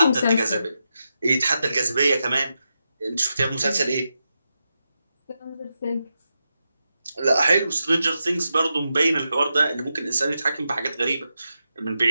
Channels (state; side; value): inverted; both; correlation -0.88